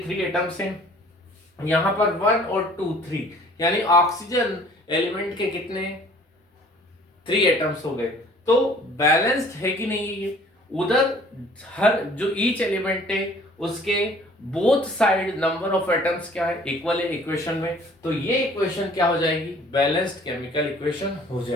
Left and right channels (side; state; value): both; normal; correlation 0.53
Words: एटम्स हैं, यहाँ पर 1 और 2 3, यानी ऑक्सीजन एलिमेंट के कितने 3 एटम्स हो गए। तो बैलेंस्ड है कि नहीं ये। उधर हर जो ईच एलिमेंट है उसके both side number of atoms क्या है, इक्वल है इक्वेशन में। तो ये इक्वेशन क्या हो जाएगी, बैलेंस्ड केमिकल इक्वेशन हो